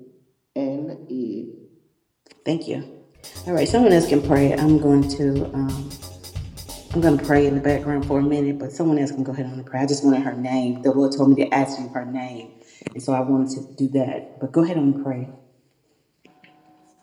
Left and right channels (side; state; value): both; identical; correlation 1.00